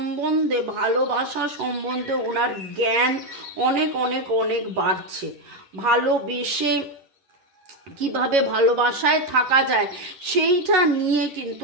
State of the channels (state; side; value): late; left; 11 ms